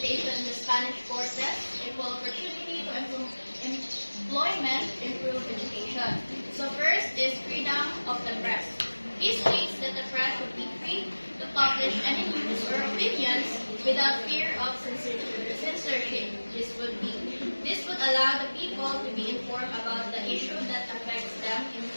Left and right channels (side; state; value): both; inverted; correlation -1.00